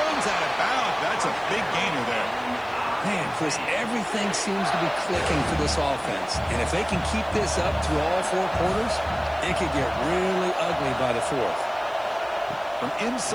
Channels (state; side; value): noise; right; hiss, 29 dB below the sound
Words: out of bounds. That's a big gainer there. Man, Chris, everything seems to be clicking for this offense. And if they can keep this up through all 4 quarters, it could get really ugly by the 4th. From